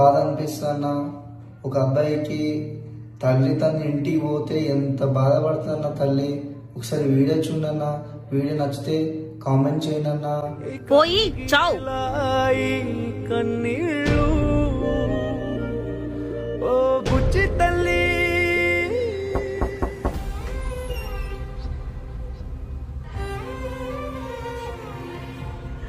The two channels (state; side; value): identical; both; correlation 1.00